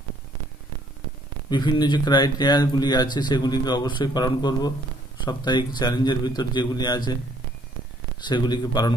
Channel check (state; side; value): normal; both; correlation 0.63